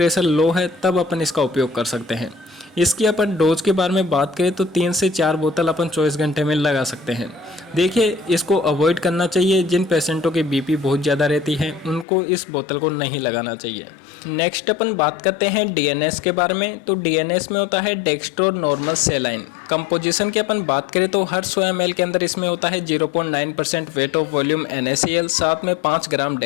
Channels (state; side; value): drops out; right; at 12.1 s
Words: लो है तब अपन इसका उपयोग कर सकते हैं। इसकी अपन डोज के बारे में बात करें तो 3 से 4 बोतल अपन 24 घंटे में लगा सकते हैं। देखिए, इसको अवॉइड करना चाहिए। जिन पेशेंटों की बीपी बहुत ज़्यादा रहती है उनको इस बोतल को नहीं लगाना चाहिए। नेक्स्ट अपन बात करते हैं डीएनएस के बारे में। तो डीएनएस में होता है डेक्स्ट्रो नॉर्मल सेलाइन। कंपोजिशन की अपन बात करें तो हर 100 ml के अंदर इसमें होता है 0.9% वेट ऑफ वॉल्यूम NaCl, साथ में 5 ग्राम